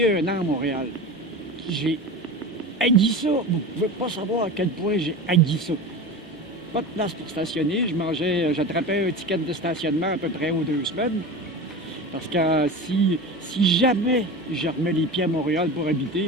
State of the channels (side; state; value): both; normal; correlation 0.29